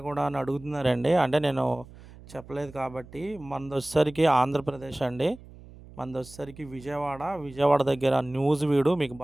కూడా అని అడుగుతున్నారండి. అంటే నేను చెప్పలేదు కాబట్టి మనదొచ్చేసరికి ఆంధ్రప్రదేశ్ అండి. మనదొచ్చేసరికి విజయవాడ. విజయవాడ దగ్గర నూజివీడు మీకు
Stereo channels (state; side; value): noise; right; hum, 20 dB below the sound